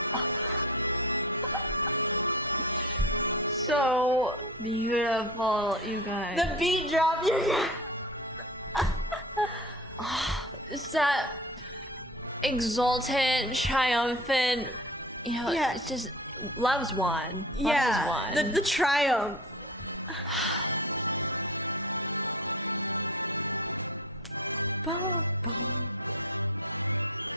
So beautiful, you guys. The beat drop, you guys. It's that exultant, triumphant, you know, it's just, love's won. Yeah, Love is won. the triumph. Bum, bum.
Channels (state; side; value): normal; both; correlation 0.34